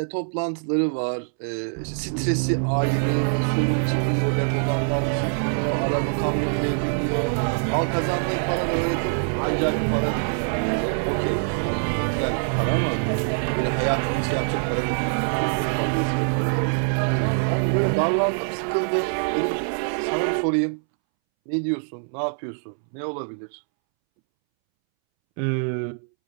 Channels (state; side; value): silent; left; 63 dB below the other